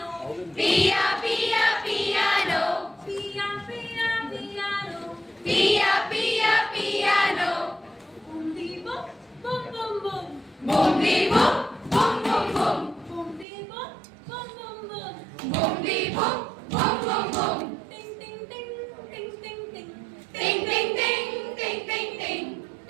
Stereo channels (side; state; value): left; drops out; at 13.5 s